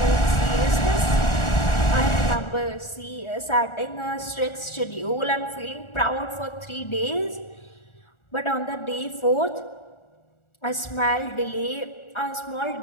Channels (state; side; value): late; right; 1.4 ms